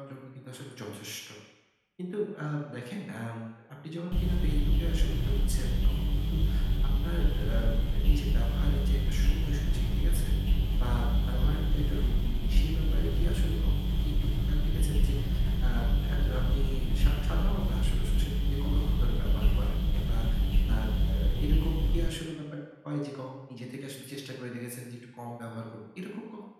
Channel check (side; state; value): both; identical; correlation 1.00